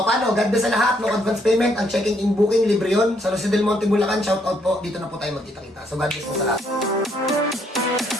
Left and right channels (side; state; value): both; normal; correlation 0.71